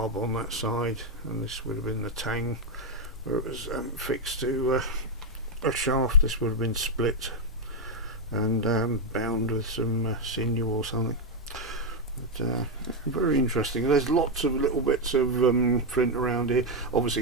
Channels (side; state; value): both; normal; correlation 0.03